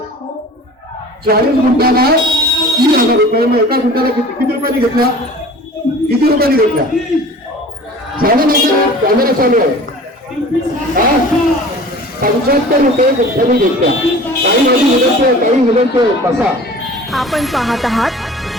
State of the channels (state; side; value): normal; both; correlation 0.43